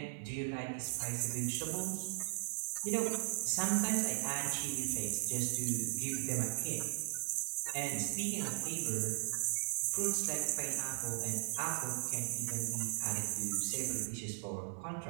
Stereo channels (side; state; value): left; silent; 53 dB below the other